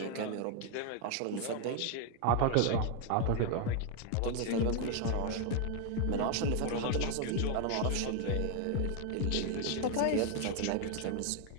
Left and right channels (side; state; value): both; different; correlation 0.01